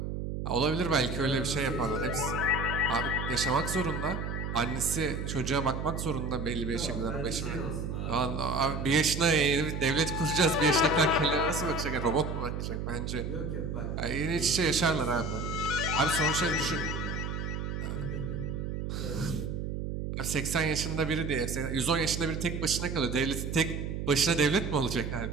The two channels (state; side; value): noise; right; hum, 4 dB below the sound